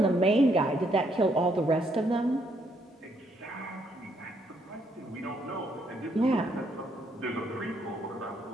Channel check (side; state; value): both; normal; correlation 0.72